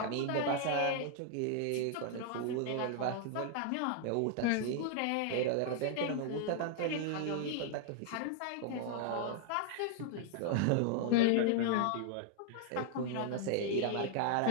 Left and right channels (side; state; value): both; different; correlation -0.01